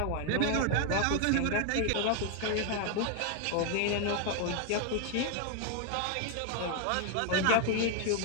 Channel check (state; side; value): different; both; correlation 0.00